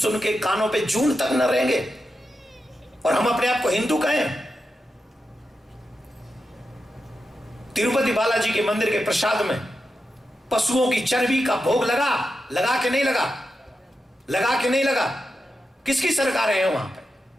के कानों पे जून तक न रहेंगे, और हम अपने आप को हिंदू कहें। तिरुपति बालाजी के मंदिर के प्रसाद में पशुओं की चर्बी का भोग लगा? लगा के नहीं लगा? लगा के नहीं लगा? किसकी सरकार है वहां पे?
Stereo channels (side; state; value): both; normal; correlation 0.89